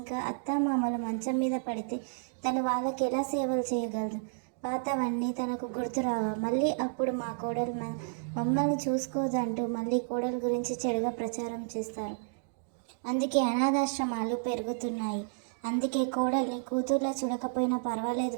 అత్తామామలు మంచం మీద పడితే తను వాళ్ళకి ఎలా సేవలు చేయగలదు? పాతవన్నీ తనకు గుర్తురావా? మళ్ళీ అప్పుడు మా కోడలు మమ్మల్ని చూసుకోదంటూ మళ్ళీ కోడలు గురించి చెడుగా ప్రచారం చేస్తారు. అందుకే అనాథాశ్రమాలు పెరుగుతున్నాయి. అందుకే కోడల్ని కూతుర్లా చూడకపోయినా పర్వాలేదు,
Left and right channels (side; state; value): left; silent; digital silence